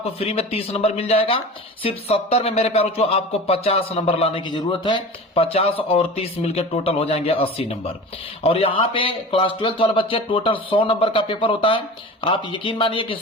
फ्री में 30 नंबर मिल जाएगा। सिर्फ 70 में मेरे प्यारों आपको 50 नंबर लाने की जरूरत है। 50 और 30 मिलकर टोटल हो जाएंगे 80 नंबर। और यहाँ पे क्लास 12th वाले बच्चे टोटल 100 नंबर का पेपर होता है। आप यकीन मानिए कि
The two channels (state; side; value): normal; both; correlation 0.35